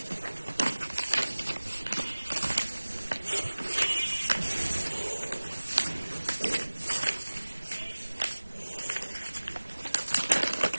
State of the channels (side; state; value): both; inverted; correlation -1.00